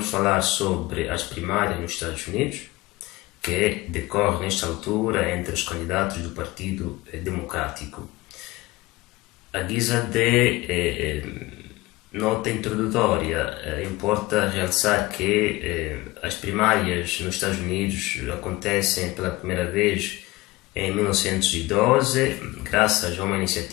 falar sobre as primárias nos Estados Unidos, que decorre nesta altura entre os candidatos do Partido Democrático. A guisa de nota introdutória, importa realçar que as primárias nos Estados Unidos acontecem pela primeira vez em 1912, graças a uma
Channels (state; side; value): quieter; right; 20.1 dB